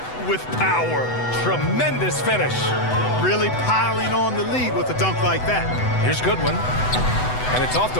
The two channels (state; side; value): late; right; 8.0 ms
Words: with power. Tremendous finish. Really piling on the lead with a dunk like that. Here's Goodwin. And it's off the